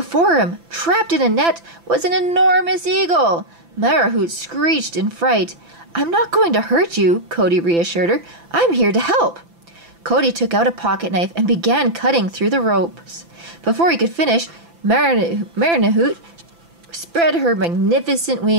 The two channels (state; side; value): late; left; 5.9 ms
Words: him, trapped in a net, was an enormous eagle. Marahoot screeched in fright. "I'm not going to hurt you," Cody reassured her. "I'm here to help." Cody took out a pocket knife and began cutting through the ropes. Before he could finish, Marahoot spread her magnificent